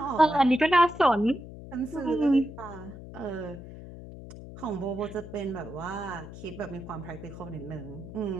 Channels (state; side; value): noise; left; hum, 13 dB below the sound